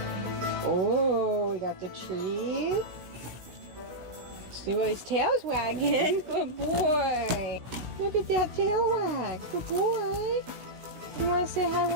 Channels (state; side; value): late; left; 16 ms